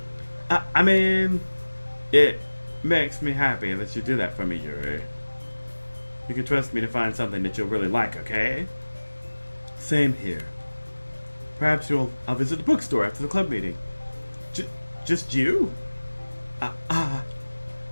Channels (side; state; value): both; inverted; correlation -1.00